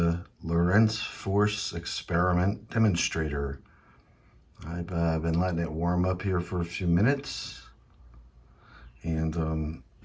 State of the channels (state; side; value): identical; both; correlation 1.00